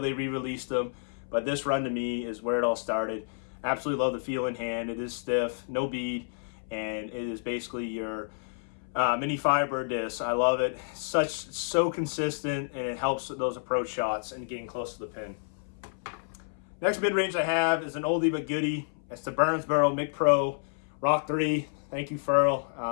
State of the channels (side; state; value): right; silent; 58 dB below the other